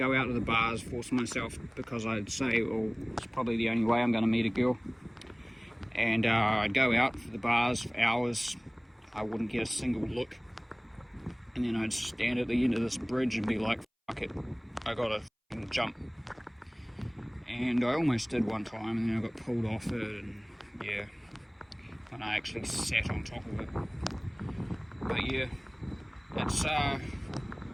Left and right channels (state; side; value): identical; both; correlation 1.00